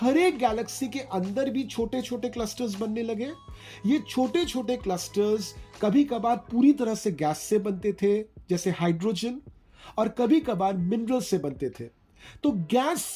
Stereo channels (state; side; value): identical; both; correlation 1.00